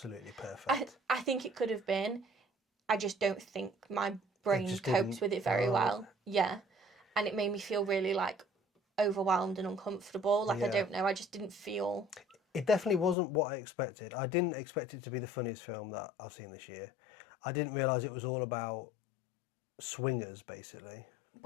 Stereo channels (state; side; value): drops out; right; at 13.2 s